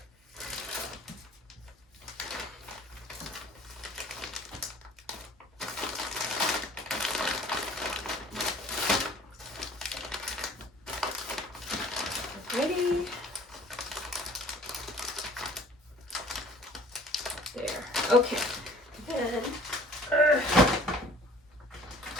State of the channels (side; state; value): both; normal; correlation 0.51